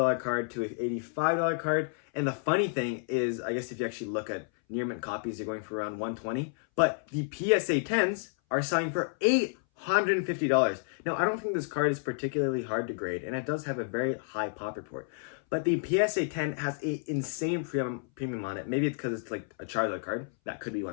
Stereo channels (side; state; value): right; silent; 58 dB below the other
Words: card to an $85 card. And the funny thing is, I guess if you actually look at near mint copies, you're going for around $120. But the PSA 10s are selling for $850. Now, I don't think this card is particularly hard to grade, and it does have a very high pop report. But the PSA 10 has an insane premium on it. Maybe it's because it's like a Charizard card. That could be